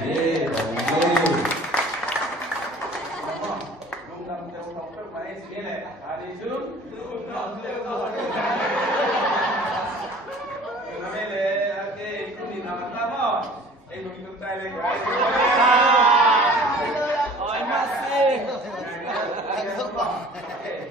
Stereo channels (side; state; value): both; normal; correlation 0.48